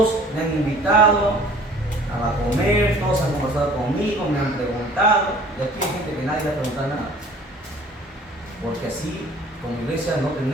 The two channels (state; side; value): normal; both; correlation 0.51